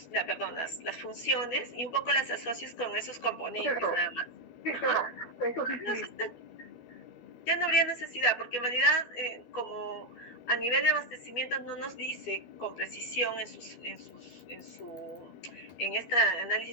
funciones y un poco las asocies con esos componentes, nada más. Sí, claro, eso sí. Ya no habría necesidad, porque en realidad, como a nivel de abastecimiento no nos dice con precisión en este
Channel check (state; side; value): late; right; 12 ms